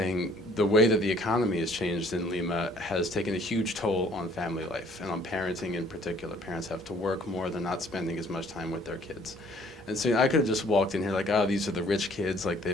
the way that the economy has changed in Lima has taken a huge toll on family life and on parenting in particular. Parents have to work more, they're not spending as much time with their kids. And so I could have just walked in here like, oh, these are the rich kids, like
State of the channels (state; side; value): normal; both; correlation 0.58